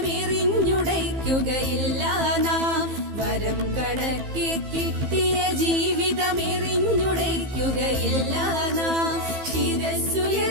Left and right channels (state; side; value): late; left; 15 ms